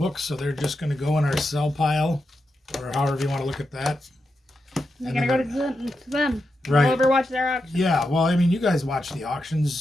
so they're just going to go in our sell pile, or however you want to look at that. You're going to go to them. Right. We'll overwatch their auction. Yeah, well, I mean, you guys watch the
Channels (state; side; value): normal; both; correlation 0.87